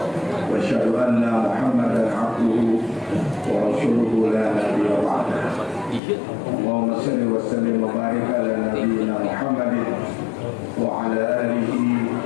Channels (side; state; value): right; drops out; at 6.0 s